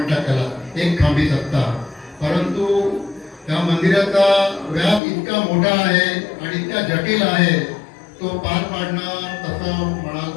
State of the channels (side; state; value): right; drops out; at 5.0 s